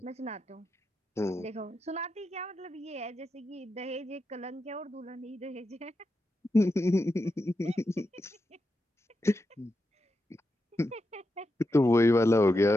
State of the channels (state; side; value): normal; both; correlation 0.87